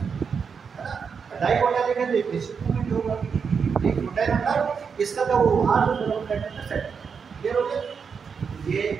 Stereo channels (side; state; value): left; quieter; 6.1 dB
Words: ना, डाई कोंडाइलिक है तो एक निश्चित मूवमेंट होगा, एक कोंडाइल अंदर इसका तो वो उभार जो दोनों कोंडाइल में सेट क्लियर हो गया। ये